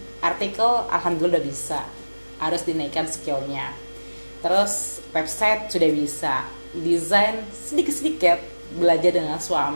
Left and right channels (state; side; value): inverted; both; correlation -1.00